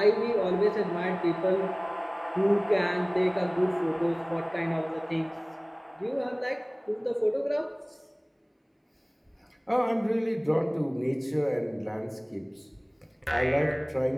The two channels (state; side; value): identical; both; correlation 1.00